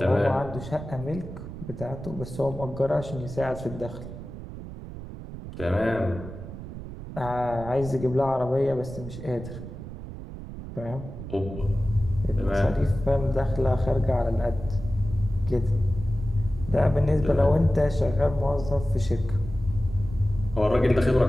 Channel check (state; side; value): noise; right; rumble, 11 dB below the sound